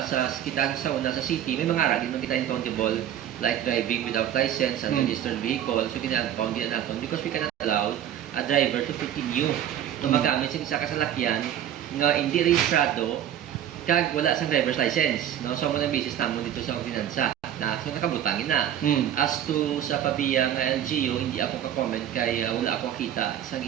city may mga ara din man kita countable like driving without license and registered vehicle. So gina-impound din natin because we cannot allow a driver to continue na magamit sa isa ka salakyan nga hindi rehistrado kag wala sang driver's license, no? So mo na basis namon dito sa ordinansa na so nakabutangin na. As to sa Pabiya nga LGU, hindi ako ka-comment kay wala ako kita sa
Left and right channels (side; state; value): left; quieter; 10.7 dB